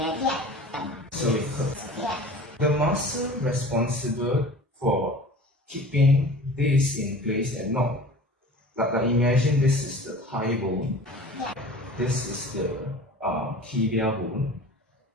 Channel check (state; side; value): normal; both; correlation 0.41